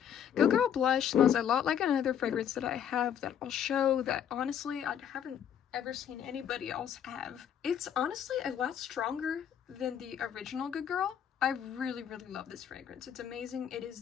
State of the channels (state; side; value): quieter; right; 9.0 dB